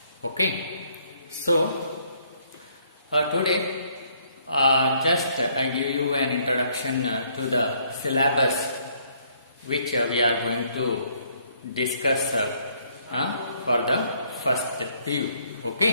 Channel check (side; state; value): both; inverted; correlation -0.67